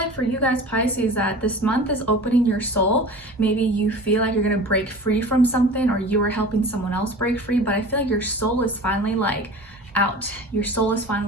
for you guys Pisces that this month is opening your soul. Maybe you feel like you're gonna break free from something, or you are helping someone else break free, but I feel like your soul is finally like out. Your soul is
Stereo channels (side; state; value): both; normal; correlation 0.38